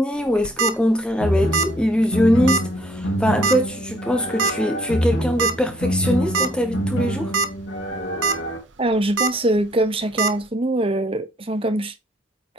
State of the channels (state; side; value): normal; both; correlation 0.63